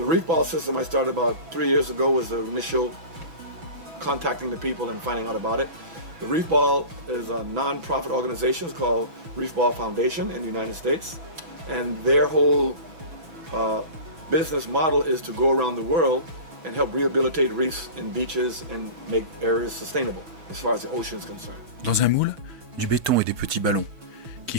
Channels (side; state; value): left; late; 6.0 ms